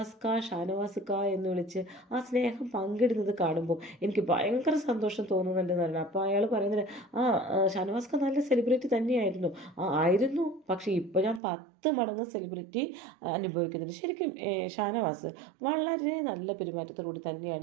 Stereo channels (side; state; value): left; drops out; at 11.4 s